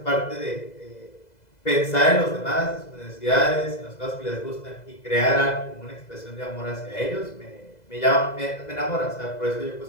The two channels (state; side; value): late; right; 2.0 ms